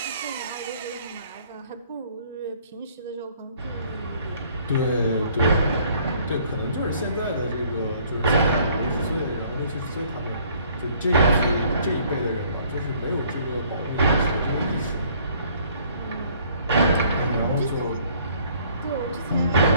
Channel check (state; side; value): inverted; both; correlation -0.60